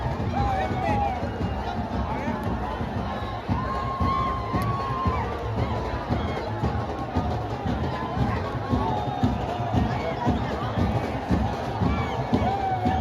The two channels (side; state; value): both; identical; correlation 1.00